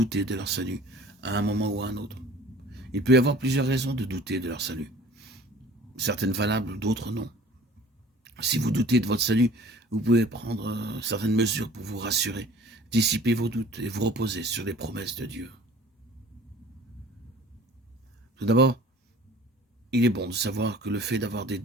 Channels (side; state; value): both; normal; correlation 0.47